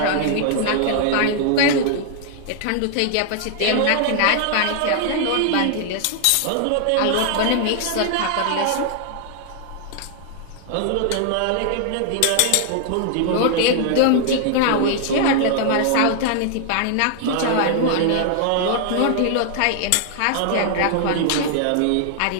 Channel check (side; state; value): both; different; correlation 0.00